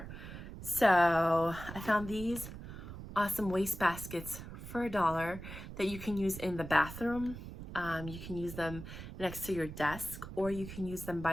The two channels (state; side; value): noise; right; rumble, 11 dB below the sound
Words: So I found these awesome waste baskets for $1 that you can use in the bathroom. You can use them next to your desk, or you can use them